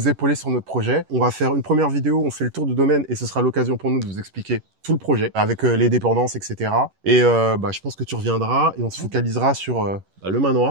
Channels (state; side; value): late; left; 11 ms